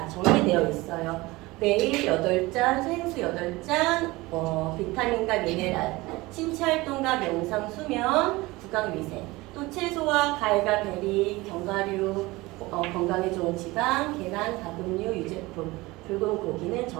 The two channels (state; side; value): quieter; left; 21.2 dB